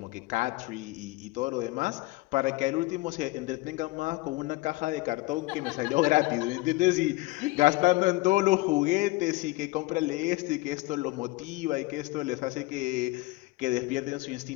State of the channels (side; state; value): right; quieter; 21.0 dB